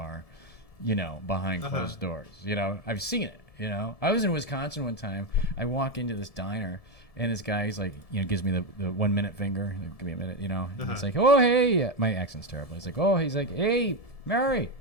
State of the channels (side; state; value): right; late; 1.7 ms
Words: behind closed doors. I've seen it. I was in Wisconsin one time. I walk into this diner, and this guy, he's like, gives me the 1 minute finger. Like, give me a minute, And it's like, oh, hey. My accent's terrible. He's like, hey, Mary.